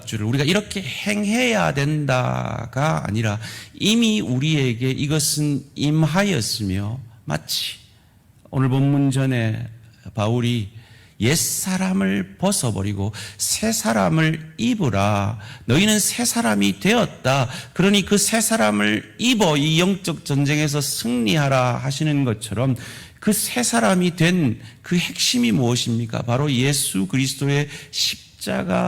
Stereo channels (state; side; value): identical; both; correlation 1.00